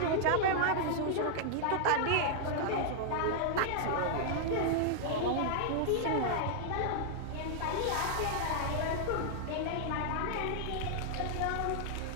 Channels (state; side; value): different; both; correlation -0.01